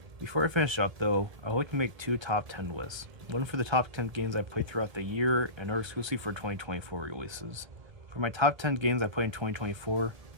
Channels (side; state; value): left; late; 1.3 ms